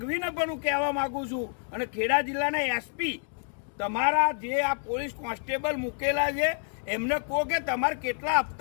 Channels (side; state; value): right; silent; digital silence